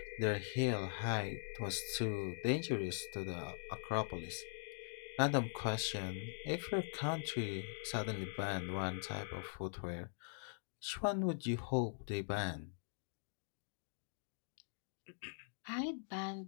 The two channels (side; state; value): right; silent; digital silence